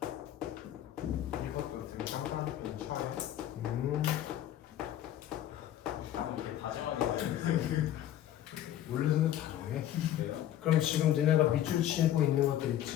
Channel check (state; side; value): quieter; right; 11.9 dB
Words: 이것도 되게 깜깜한 차에. 이게 다정하게 원래는 다정해. 돼요? 그럼 지금 너네가 밑줄 치고 있는 것들